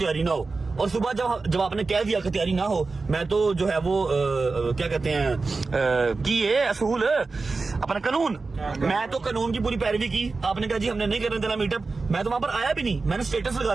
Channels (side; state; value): left; quieter; 4.0 dB